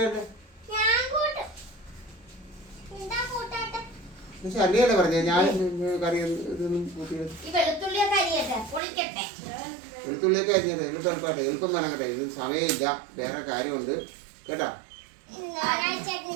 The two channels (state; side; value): drops out; left; at 8.8 s